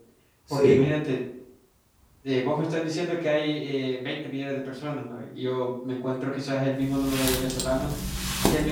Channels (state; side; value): identical; both; correlation 1.00